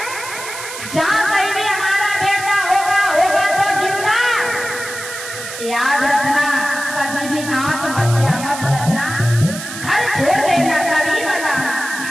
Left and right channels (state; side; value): noise; right; hiss, 10 dB below the sound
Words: जहाँ कहीं भी हमारा बेटा होगा तो जिंदा। याद रखना, कभी भी आत्महत्या मत करना, घर छोड़ देना, कभी बताना।